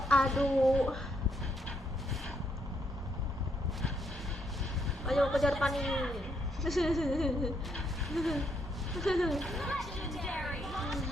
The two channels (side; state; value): both; normal; correlation 0.75